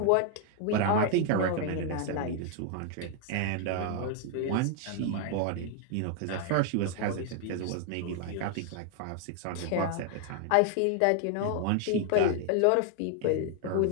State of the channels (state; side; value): different; both; correlation 0.00